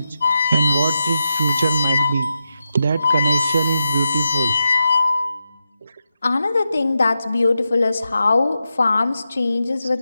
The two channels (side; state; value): both; inverted; correlation -0.88